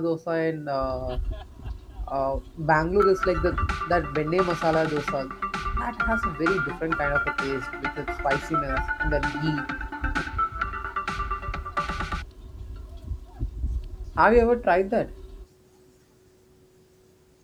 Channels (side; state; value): both; identical; correlation 1.00